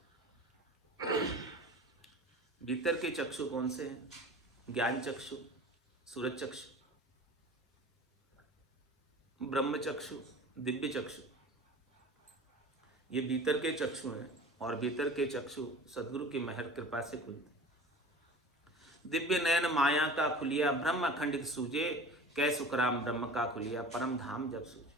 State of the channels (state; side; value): normal; both; correlation 0.40